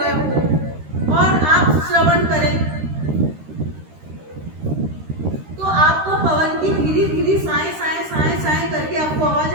हो और आप श्रवण करें तो आपको पवन की धीरे धीरे साए साए साए साए करके आपको आवाज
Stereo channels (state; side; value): late; left; 13 ms